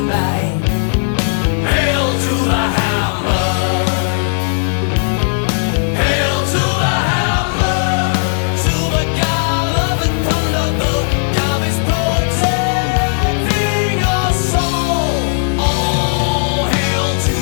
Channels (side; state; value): right; silent; digital silence